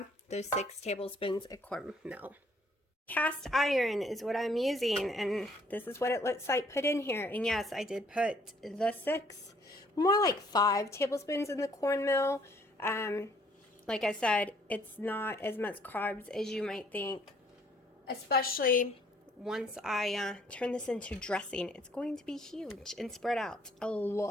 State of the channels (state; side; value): normal; both; correlation 0.63